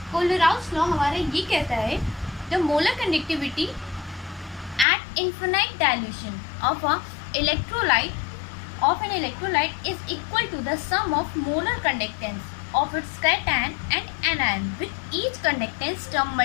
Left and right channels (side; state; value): right; drops out; at 4.9 s